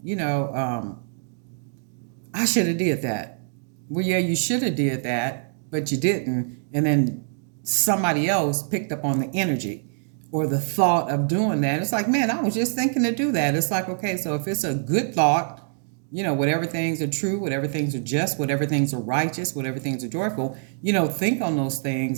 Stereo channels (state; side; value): silent; left; digital silence